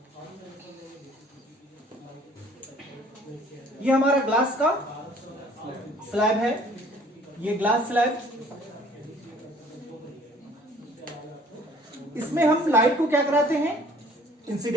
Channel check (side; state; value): both; normal; correlation 0.55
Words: ये हमारा ग्लास का स्लैब है, ये ग्लास स्लैब। इसमें हम लाइट को क्या कराते हैं,